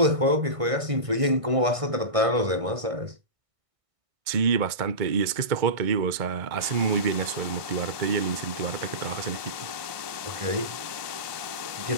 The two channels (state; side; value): late; left; 1.6 ms